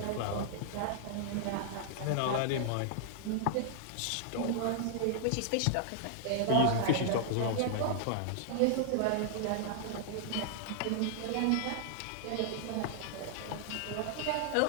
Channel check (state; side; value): different; both; correlation -0.01